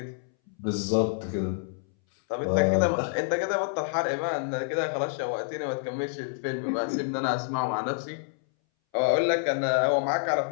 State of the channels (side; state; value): right; silent; 60 dB below the other